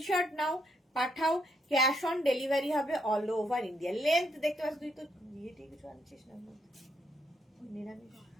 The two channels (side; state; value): both; normal; correlation 0.76